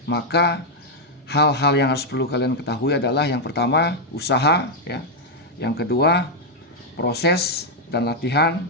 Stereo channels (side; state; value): both; normal; correlation -0.01